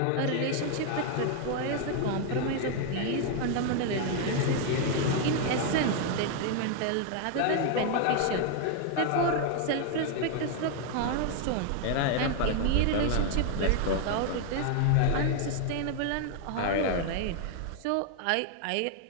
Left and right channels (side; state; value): both; different; correlation 0.00